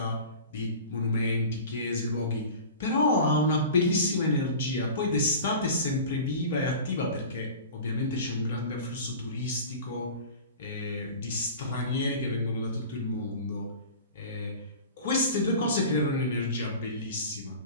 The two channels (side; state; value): both; inverted; correlation -0.37